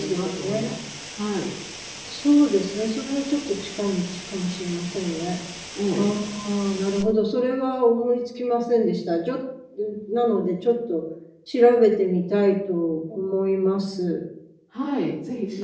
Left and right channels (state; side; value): identical; both; correlation 1.00